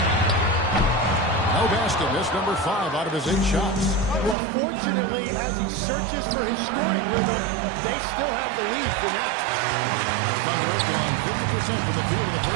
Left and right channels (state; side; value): drops out; left; at 4.4 s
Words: No basket. Missed number 5 out of his 8 shots. Well, fortunately, as he searches for his scoring rhythm, they still have the lead for now. Thunder has gone 50% from the field in the